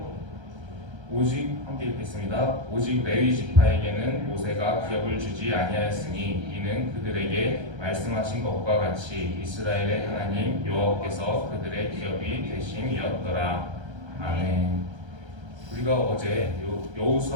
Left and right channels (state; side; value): late; left; 1.3 ms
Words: 오직 함께 읽겠습니다. 오직 레위 지파에게는 모세가 기업을 주지 아니하였으니 이는 그들에게 말씀하신 것과 같이 이스라엘의 하나님 여호와께서 그들의 기업이 되심이었더라. 아멘. 우리가 어제